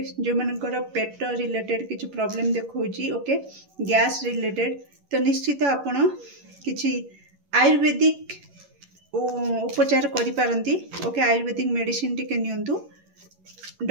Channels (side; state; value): left; late; 11 ms